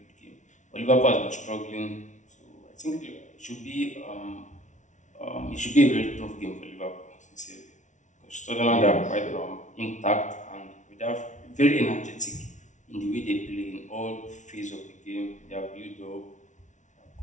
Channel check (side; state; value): right; late; 0.36 ms